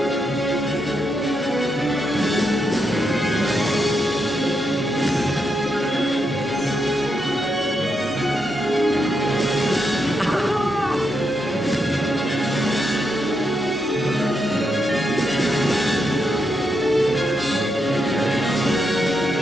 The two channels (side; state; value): both; normal; correlation 0.82